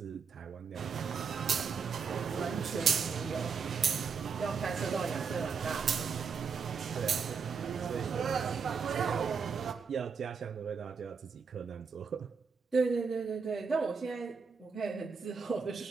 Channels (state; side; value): quieter; left; 5.8 dB